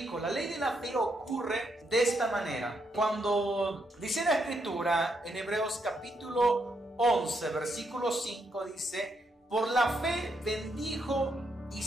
la ley de la fe ocurre de esta manera. Cuando dice la Escritura en Hebreos capítulo 11, versículo 5, dice: por la fe bendijo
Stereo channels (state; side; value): normal; both; correlation 0.78